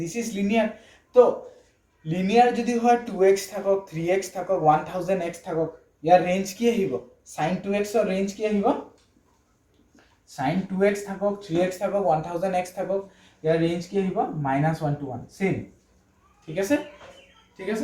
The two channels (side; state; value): both; identical; correlation 1.00